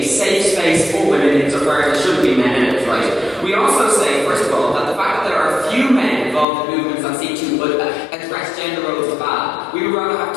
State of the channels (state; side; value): drops out; right; at 6.5 s